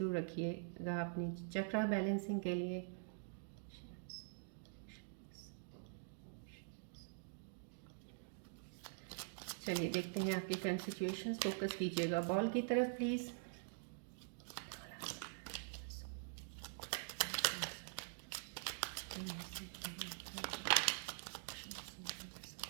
रखिएगा अपनी चक्रा बैलेंसिंग के लिए। चलिए देखते हैं आपकी करंट सिचुएशंस। फोकस कीजिएगा बॉल की तरफ प्लीज़।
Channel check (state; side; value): silent; left; digital silence